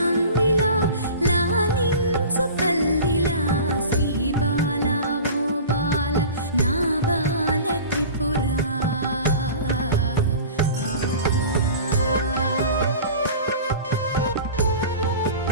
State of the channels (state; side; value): inverted; both; correlation -0.38